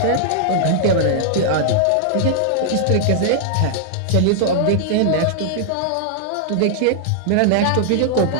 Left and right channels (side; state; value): both; different; correlation -0.01